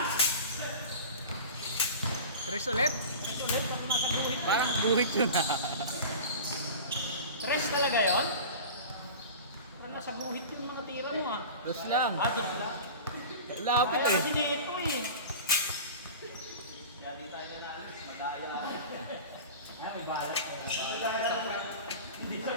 Tres ulit? Tres ulit. Pag nasa buhit. Parang buhit yun ha. Tres talaga yun? Parang nasa buhit yung mga tira mo ah. Dos lang. Dos lang. Lapit Kaya eh. kasi dito eh. Kaya di tayo nanalis. Madaya. Ay, may balat. Hindi sa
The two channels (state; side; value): inverted; both; correlation -0.34